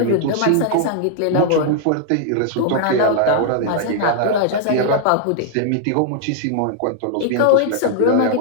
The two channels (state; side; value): different; both; correlation -0.01